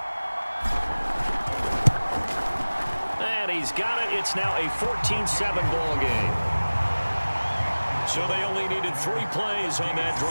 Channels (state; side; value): inverted; both; correlation -1.00